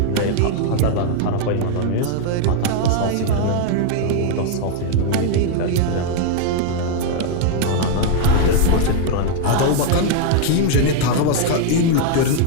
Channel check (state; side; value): different; both; correlation 0.00